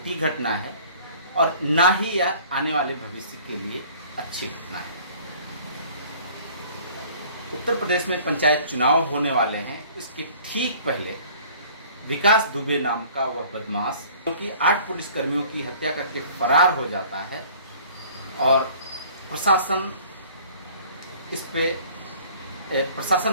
घटना है और ना ही यह आने वाले भविष्य के लिए अच्छी घटना है। उत्तर प्रदेश में पंचायत चुनाव होने वाले हैं। इसके ठीक पहले विकास दुबे नाम का वह बदमाश, क्योंकि 8 पुलिसकर्मियों की हत्या करके फरार हो जाता है और प्रशासन इस पे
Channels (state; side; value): inverted; both; correlation -0.51